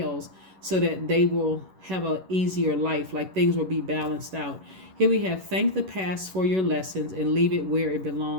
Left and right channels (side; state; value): left; late; 11 ms